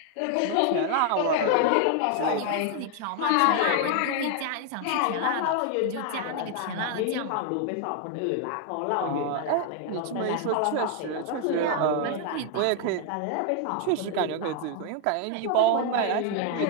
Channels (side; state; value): both; different; correlation 0.00